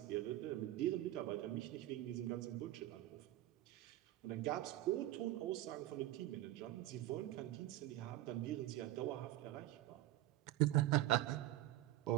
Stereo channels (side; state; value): left; quieter; 14.9 dB